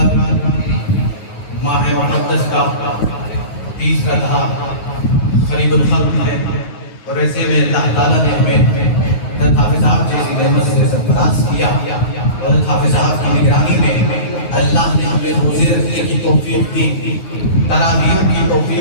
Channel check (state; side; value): late; right; 9.4 ms